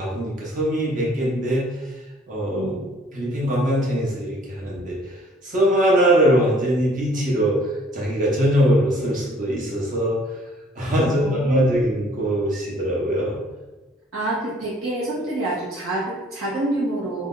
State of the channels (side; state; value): both; normal; correlation 0.58